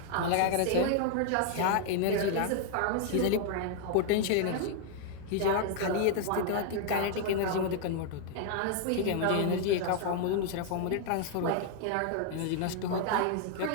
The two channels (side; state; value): both; different; correlation 0.00